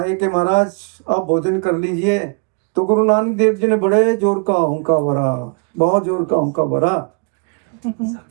कि महाराज आप भोजन कर लीजिए। तो गुरु नानक देव जी ने बड़े जोर का हुंकार भरा, बहुत जोर का हुंकार भरा।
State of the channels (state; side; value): quieter; left; 37.4 dB